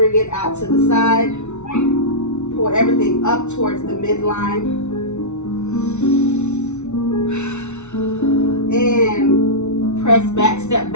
it out to the side. Pull everything up towards the midline. Press back, step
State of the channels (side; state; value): right; late; 0.82 ms